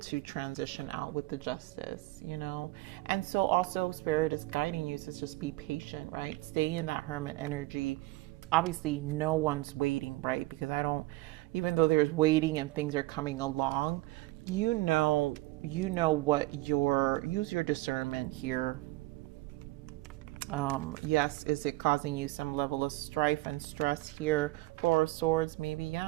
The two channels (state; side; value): quieter; left; 20.0 dB